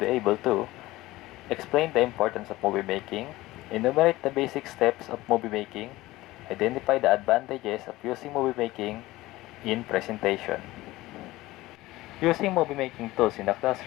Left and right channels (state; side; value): quieter; right; 18.2 dB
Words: able to explain the importance of movie making, enumerate the basic steps of movie making, identify the advantages of using movie making in presentation. Using movie making tools in the